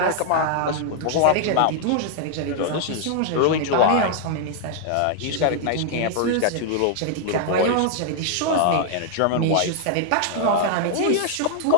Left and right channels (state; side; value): different; both; correlation 0.00